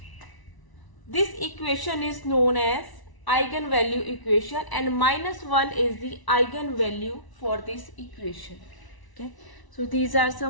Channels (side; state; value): right; late; 1.0 ms